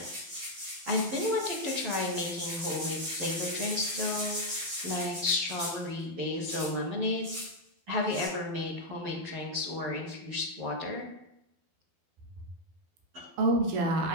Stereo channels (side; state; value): left; late; 12 ms